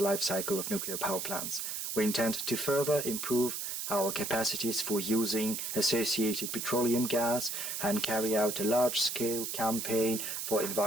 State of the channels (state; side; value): noise; right; hiss, 4 dB below the sound